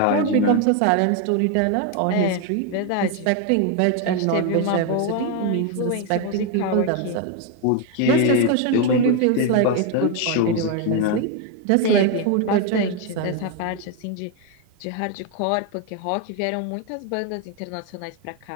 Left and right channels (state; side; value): different; both; correlation 0.01